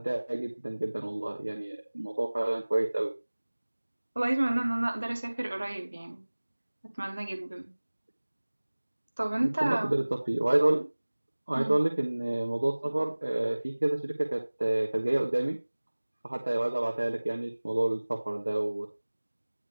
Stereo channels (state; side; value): inverted; both; correlation -1.00